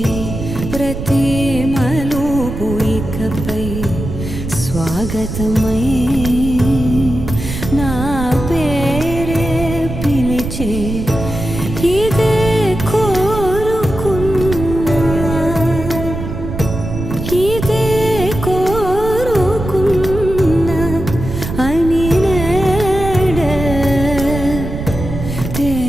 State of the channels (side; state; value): right; noise; rumble, 6 dB below the sound